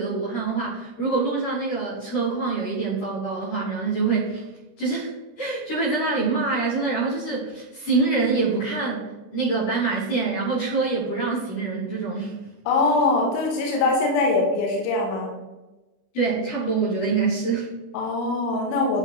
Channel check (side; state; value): right; late; 25 ms